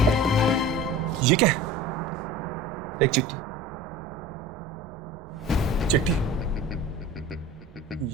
ये क्या है? एक चिट्ठी। चिट्ठी?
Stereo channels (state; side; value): normal; both; correlation 0.38